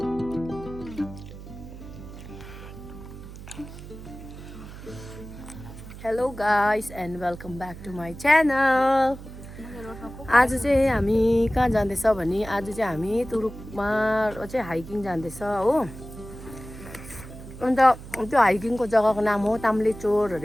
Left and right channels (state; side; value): noise; right; hum, 14 dB below the sound